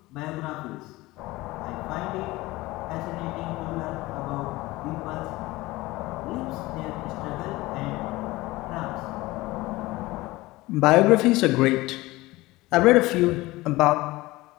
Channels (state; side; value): quieter; right; 19.8 dB